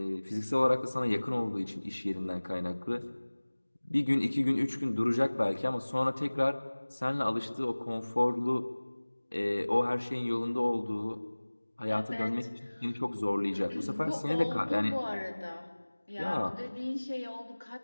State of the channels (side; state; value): both; inverted; correlation -1.00